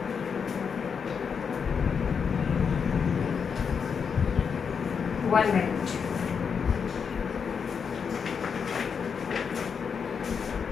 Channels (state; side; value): quieter; right; 6.3 dB